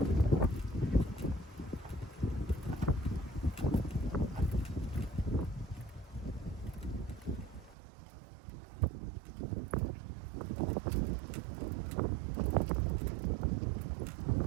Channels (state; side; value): drops out; left; at 7.8 s